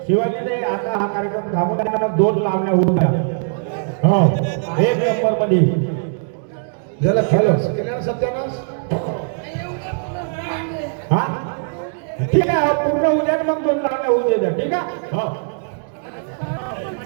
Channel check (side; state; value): left; silent; digital silence